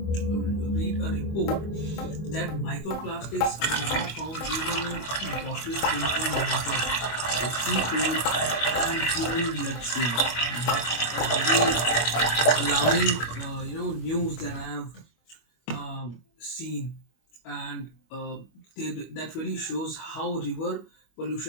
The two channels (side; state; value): right; late; 25 ms